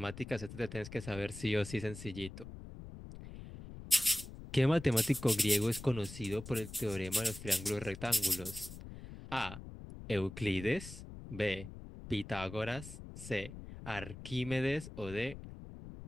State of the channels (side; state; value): left; noise; rumble, 12 dB below the sound